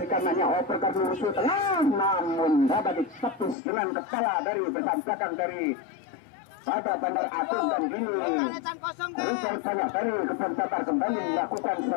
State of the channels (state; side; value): drops out; right; at 3.6 s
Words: kanannya, operkan musuh tengah, namun dapat ditepis dengan kepala dari besan belakang dari pada Bandar Agung. Dan gini Richard banyak dari Kebun Damar kembali melakukan